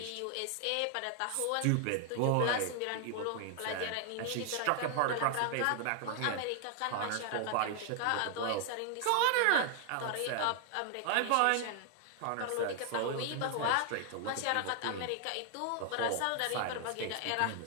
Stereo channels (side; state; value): both; different; correlation 0.00